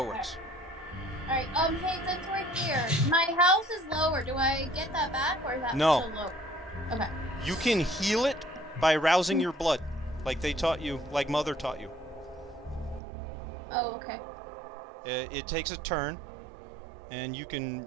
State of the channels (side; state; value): left; drops out; at 13.0 s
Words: it works. Alright, hey, since we're here, my house is lower. Do I get that back, or is that still low? Okay. You can heal it by rousing your blood, like they taught you, like Mother taught you. Oh, okay. It takes a turn, and you can